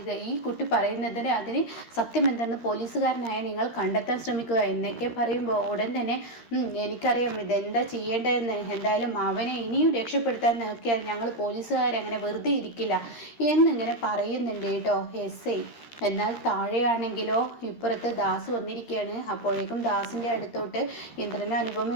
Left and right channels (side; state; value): right; late; 13 ms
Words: ഈ കുട്ടി പറയുന്നതിന് അതിന് സത്യം എന്തെന്ന് പോലീസുകാരനായ നിങ്ങൾ കണ്ടെത്താൻ ശ്രമിക്കുക എന്നൊക്കെ പറയുമ്പോൾ ഉടൻ തന്നെ എനിക്കറിയാം ഇതെന്താ ചെയ്യേണ്ടതെന്ന്. എന്തായാലും അവനെ ഇനിയും രക്ഷപ്പെടുത്താൻ നോക്കിയാൽ ഞങ്ങൾ പോലീസുകാരങ്ങനെ വെറുതെ ഇരിക്കില്ല എന്നിങ്ങനെ പറയുന്നുണ്ട് കേട്ടോ SI. എന്നാൽ താഴെയാണെങ്കിലോ ഇപ്പുറത്ത് ദാസ് വന്നിരിക്കുകയാണ്. അപ്പോഴേക്കും ദാസിൻ്റെ അടുത്തോട്ട് ഇന്ദ്രനും